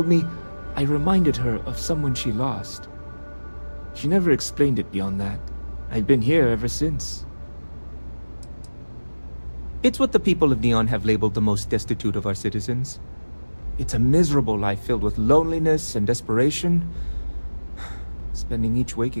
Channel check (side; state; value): both; inverted; correlation -1.00